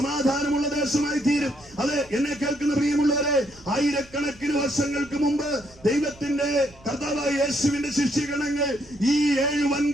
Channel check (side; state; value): right; noise; rumble, 25 dB below the sound